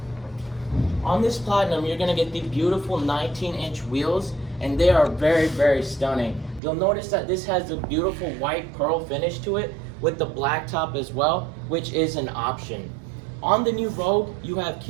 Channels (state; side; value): drops out; left; at 6.6 s